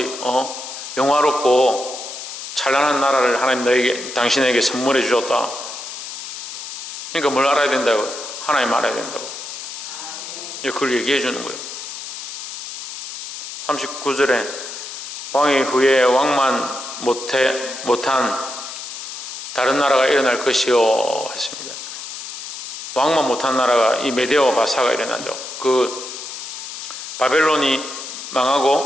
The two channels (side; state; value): left; noise; hiss, 9 dB below the sound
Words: 영화롭고 찬란한 나라를 하나님 당신에게 선물해 주셨다. 그러니까 뭘 알아야 된다고? 하나님 알아야 된다고. 그걸 얘기해 주는 거예요. 39절에 왕위 후에 왕만 못한 다른 나라가 일어날 것이요 했습니다. 왕만 못한 나라가 이 메데와 바사가 일어나죠. 그 바벨론이